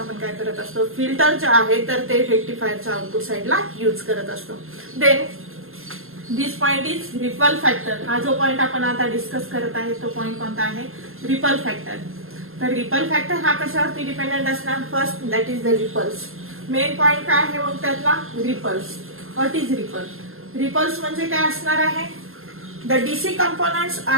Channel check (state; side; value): late; left; 0.61 ms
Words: काय करत असतो, फिल्टर जे आहे तर ते रेक्टिफायरच्या आउटपुट साइडला यूज करत असतो. Then this point is ripple factor. हा जो पॉइंट आपण आता डिस्कस करत आहे तो पॉइंट कोणता आहे, रिपल फॅक्टर. तर रिपल फॅक्टर हा कशावरती डिपेंडेंट असणार? First that is the ripples. Main point काय आहे मग त्यातला? Ripples. What is ripple? Ripples म्हणजे काय असणार आहे? The DC components